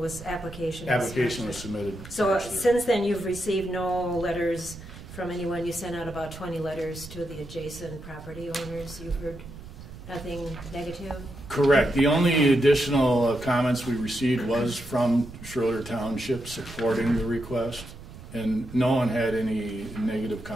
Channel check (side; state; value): right; noise; rumble, 15 dB below the sound